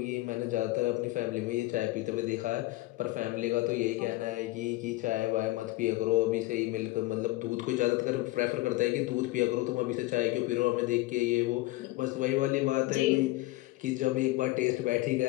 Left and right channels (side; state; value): right; quieter; 19.0 dB